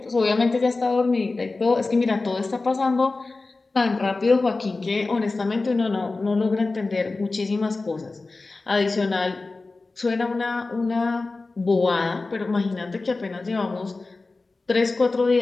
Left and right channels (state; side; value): quieter; right; 3.5 dB